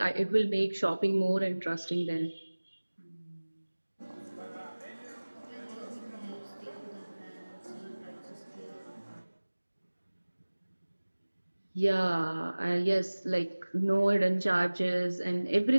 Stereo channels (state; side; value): inverted; both; correlation -1.00